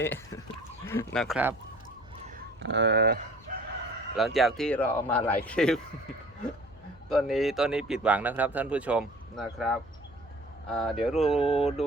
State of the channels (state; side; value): noise; left; hum, 25 dB below the sound